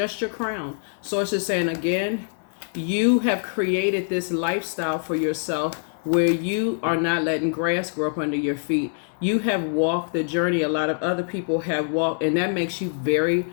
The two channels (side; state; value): right; silent; 62 dB below the other